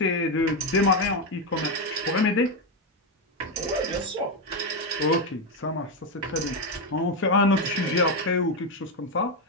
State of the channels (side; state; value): both; normal; correlation 0.08